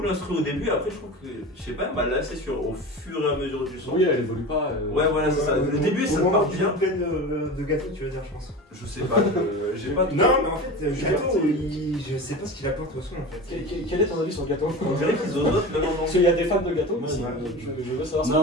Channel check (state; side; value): normal; both; correlation 0.30